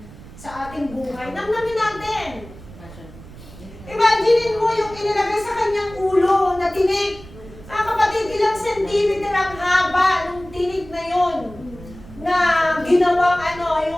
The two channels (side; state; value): right; noise; rumble, 18 dB below the sound